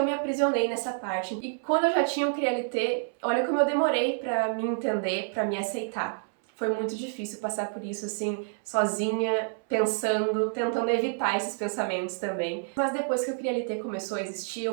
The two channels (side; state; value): left; silent; 59 dB below the other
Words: me aprisionei nessa parte. E quando eu já tinha o Crialité, olha como eu demorei pra me entender, pra me aceitar. Foi muito difícil passar por isso, assim, sozinha, pensando, tentando evitar esses pensamentos também. Mas depois que o Crialité começou a existir,